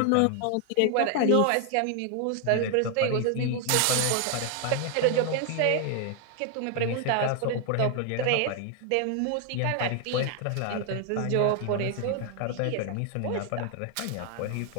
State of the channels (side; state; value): both; different; correlation 0.00